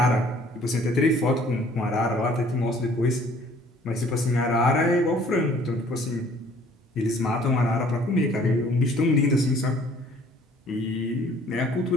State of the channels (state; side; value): normal; both; correlation 0.56